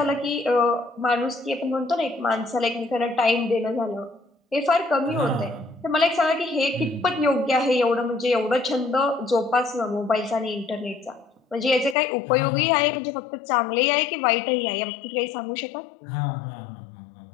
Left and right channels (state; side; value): drops out; right; at 12.0 s